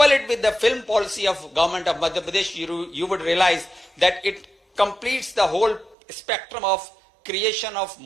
it with the film policy of government of Madhya Pradesh, you would realize that it completes the whole spectrum of creation of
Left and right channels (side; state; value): left; drops out; at 6.0 s